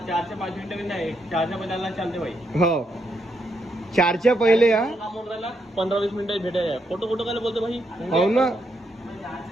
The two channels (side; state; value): both; normal; correlation 0.79